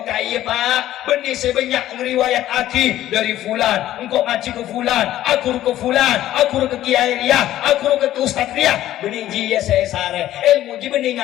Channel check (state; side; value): quieter; right; 13.4 dB